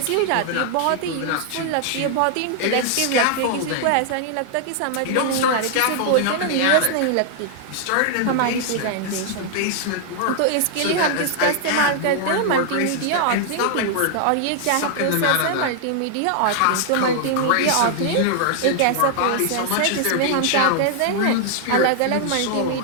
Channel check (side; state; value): both; different; correlation 0.00